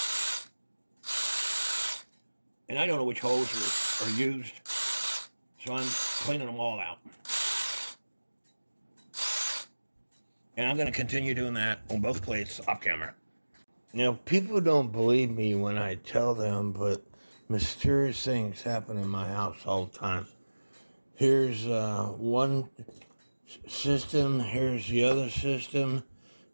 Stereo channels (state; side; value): inverted; both; correlation -1.00